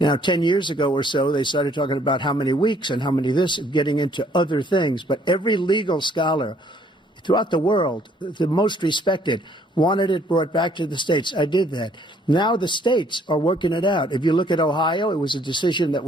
10 years ago or so, they started talking about how many weeks and how many this, getting into other things. But every legal scholar throughout the world, the most respected, wanted it brought back to the states. I did that. Now the states are working it out. If you look at Ohio, it was a decision that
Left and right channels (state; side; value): normal; both; correlation 0.63